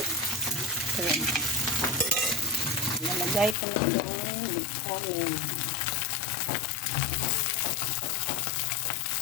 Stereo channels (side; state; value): right; drops out; at 3.6 s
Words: Nalagay ko na yung kanin.